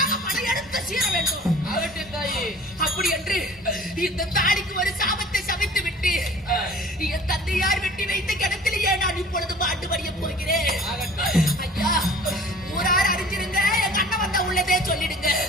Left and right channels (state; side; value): normal; both; correlation 0.46